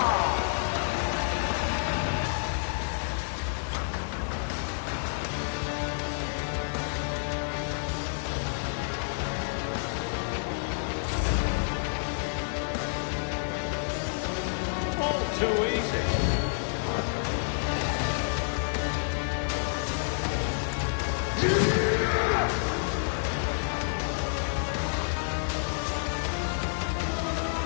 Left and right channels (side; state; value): right; silent; 58 dB below the other